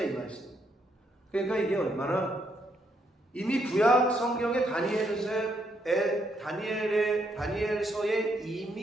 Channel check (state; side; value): normal; both; correlation 0.75